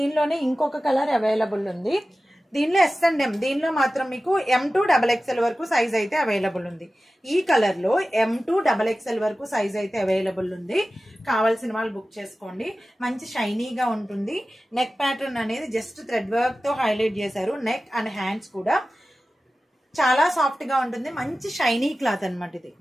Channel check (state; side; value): normal; both; correlation 0.95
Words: ఇంకొక కలర్ అవైలబుల్ ఉంది. దీనిలో ఎస్ అండ్ ఎం, దీనిలో మాత్రం మీకు M2 XXL వరకు సైజ్ అయితే అవైలబుల్ ఉంది. ఈ కలర్ లో M2 XXL వరకు సైజ్ అయితే అవైలబుల్ ఉంది. కావాల్సిన వాళ్ళు బుక్ చేసుకోండి. మంచి షైనీగా ఉంటుంది. నెక్ ప్యాటర్న్ అనేది జస్ట్ థ్రెడ్ వర్క్ తో హైలైట్ చేశారు. నెక్ అండ్ హ్యాండ్స్ కూడా చాలా సాఫ్ట్ గా ఉంటుంది. మంచి షైనీ క్లాత్ అనమాట. ఇది